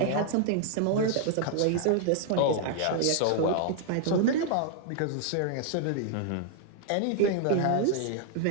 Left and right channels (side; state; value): both; different; correlation 0.00